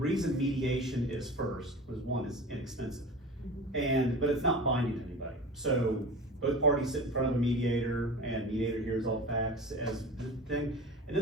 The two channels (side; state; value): both; normal; correlation 0.34